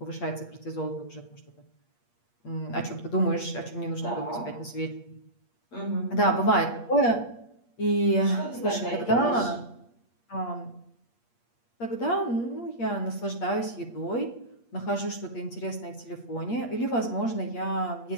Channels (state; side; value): late; right; 8.5 ms